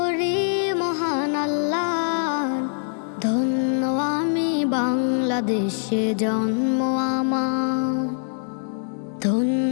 মহান আল্লাহর। ধন্য আমি বাংলাদেশে জন্ম আমার,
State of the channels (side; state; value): right; silent; digital silence